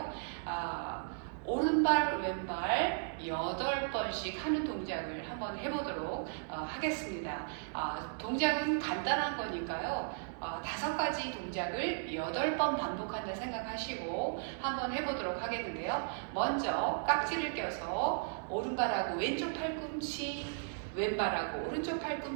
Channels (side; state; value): left; silent; digital silence